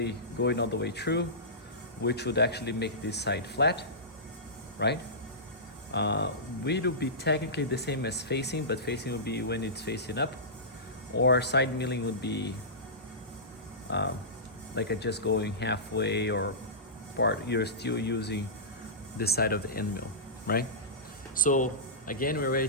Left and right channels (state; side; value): normal; both; correlation -0.19